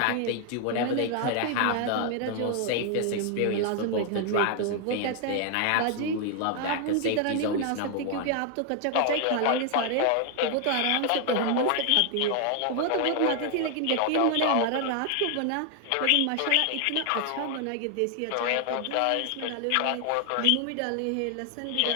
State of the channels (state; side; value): different; both; correlation 0.00